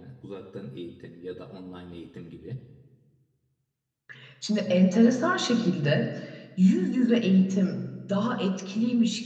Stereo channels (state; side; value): identical; both; correlation 1.00